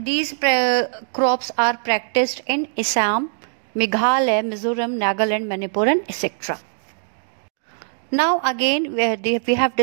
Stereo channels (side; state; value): left; silent; 64 dB below the other